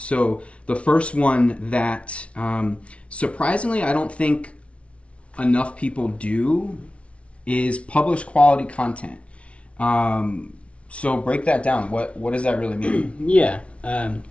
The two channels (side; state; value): right; late; 0.062 ms